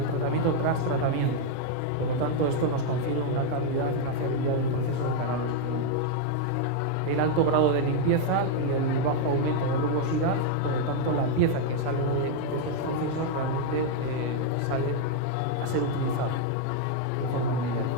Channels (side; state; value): both; different; correlation 0.00